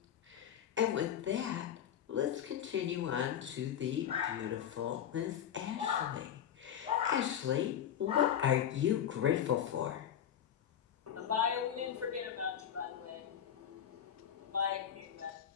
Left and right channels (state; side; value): quieter; right; 9.6 dB